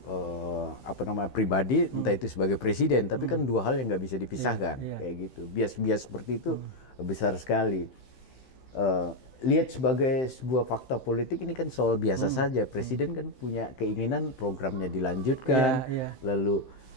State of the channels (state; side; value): late; right; 15 ms